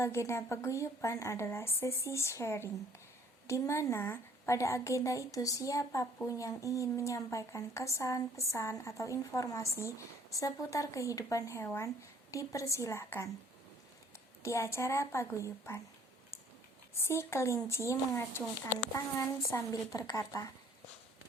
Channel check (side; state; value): both; normal; correlation 0.58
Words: paguyuban adalah sesi sharing, di mana pada agenda itu siapapun yang ingin menyampaikan kesan, pesan, atau informasi seputar kehidupan hewan dipersilahkan. Di acara paguyuban, si kelinci mengacungkan tangan sambil berkata,